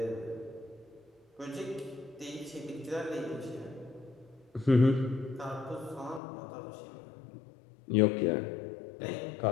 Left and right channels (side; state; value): right; drops out; at 6.2 s